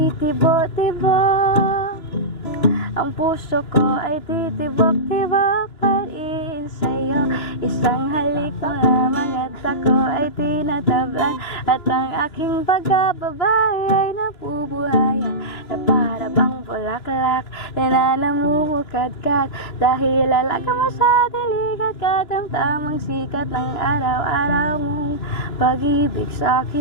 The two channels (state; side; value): late; right; 2.9 ms